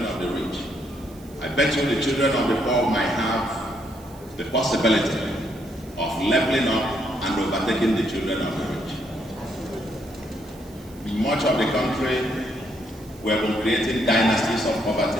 of the rich, I bet you the children of the poor might have the possibility of leveling up and overtaking the children of the rich. In much of the country, we have been creating dynasties of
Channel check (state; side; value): noise; right; hiss, 24 dB below the sound